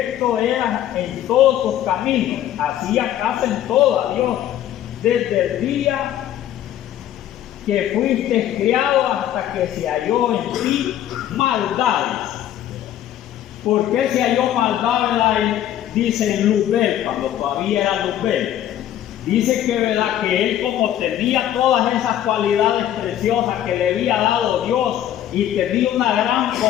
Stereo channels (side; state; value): right; quieter; 11.7 dB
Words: era en todos tus caminos. Hacía caso en todo a Dios, desde el día que fuiste criado hasta que se halló en ti maldades. ¿Por qué se halló maldad, verdad? Dice en Luzbel, cuando todavía era Luzbel. Dice que, ¿verdad?, que él, como tenía todas esas cualidades preciosas que le había dado Dios y tenía una gran